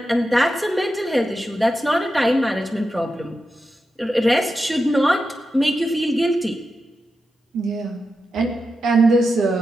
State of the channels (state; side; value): normal; both; correlation 0.89